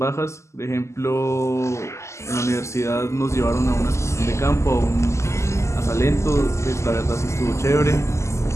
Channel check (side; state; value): right; late; 0.13 ms